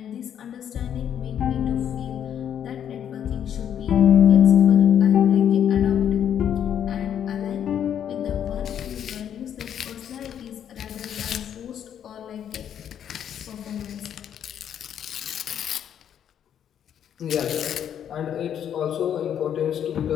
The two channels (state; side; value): quieter; right; 9.3 dB